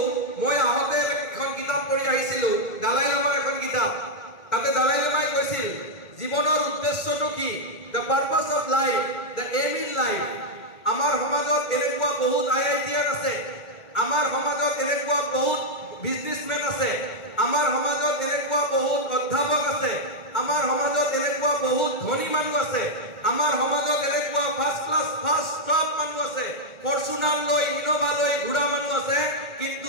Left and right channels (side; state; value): right; late; 2.2 ms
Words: মই আহোঁতে এখন কিতাপ পঢ়ি আহিছিলোঁ, দালাই লামাৰ এখন কিতাপ। তাতে দালাই লামাই কৈছিল জীৱনৰ উদ্দেশ্যটো কি, the purpose of life, the aim in life. আমাৰ সমাজত এনেকুৱা বহুত আইআইটিয়ান আছে, আমাৰ সমাজত এনেকুৱা বহুত বিজনেছমেন আছে, আমাৰ সমাজত এনেকুৱা বহুত অধ্যাপক আছে, আমাৰ সমাজত এনেকুৱা বহুত ধনী মানুহ আছে, আমাৰ সমাজত এনেকুৱা ফাৰ্ষ্ট ক্লাছ ফাৰ্ষ্ট টপ মানুহ আছে, ফৰ্চুনাৰ লৈ ইনোভা লৈ ঘূৰা মানুহ আছে, কিন্তু